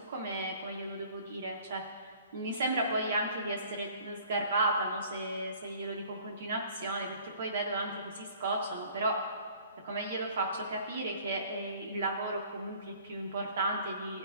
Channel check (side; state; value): both; inverted; correlation -0.53